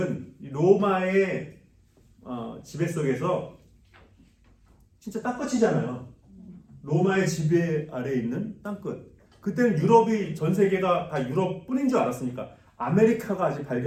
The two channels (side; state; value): both; identical; correlation 1.00